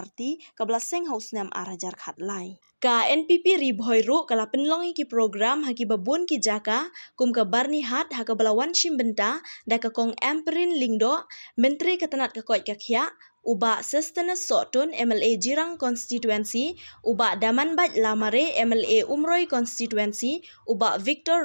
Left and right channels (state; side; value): inverted; both; correlation -1.00